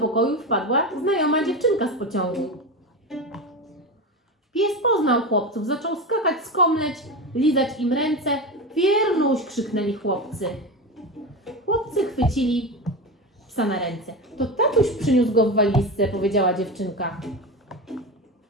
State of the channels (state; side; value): normal; both; correlation 0.21